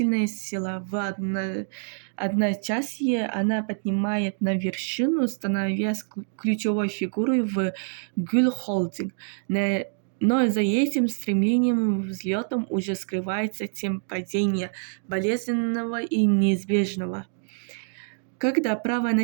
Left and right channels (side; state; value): left; silent; digital silence